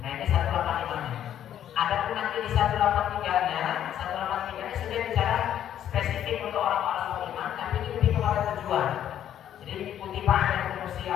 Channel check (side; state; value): right; quieter; 10.6 dB